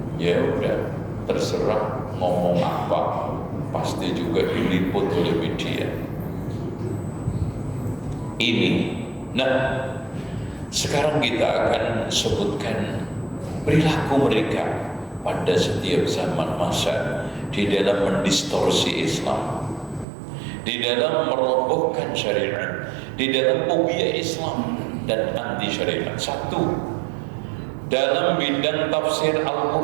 Ya udah, terserah ngomong apa, pasti juga diliput oleh media. Ini, nah sekarang kita akan sebutkan perilaku mereka pada setiap zaman masa di dalam mendistorsi Islam, di dalam merobohkan syariat, di dalam fobia Islam dan anti syariat. Satu, dalam bidang tafsir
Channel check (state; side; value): drops out; left; at 20.1 s